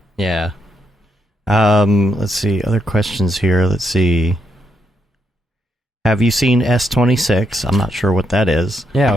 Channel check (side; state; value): both; normal; correlation 0.78